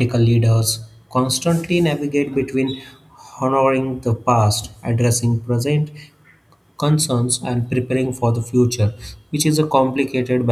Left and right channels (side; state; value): both; identical; correlation 1.00